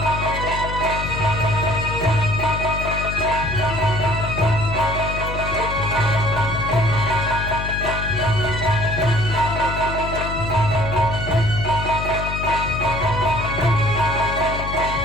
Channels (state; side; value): noise; left; hum, 6 dB below the sound